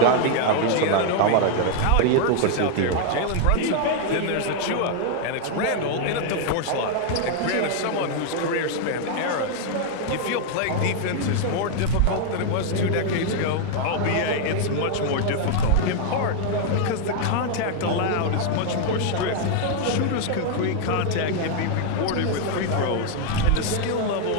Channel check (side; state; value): both; different; correlation 0.00